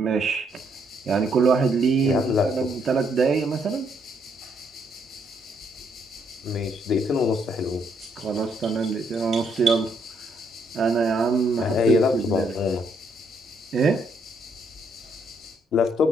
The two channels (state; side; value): normal; both; correlation 0.72